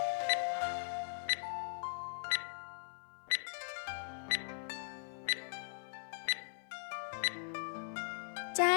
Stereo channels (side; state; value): right; silent; 51 dB below the other